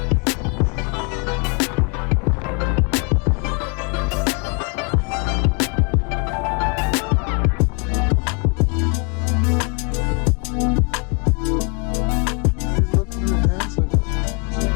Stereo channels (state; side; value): quieter; right; 35.2 dB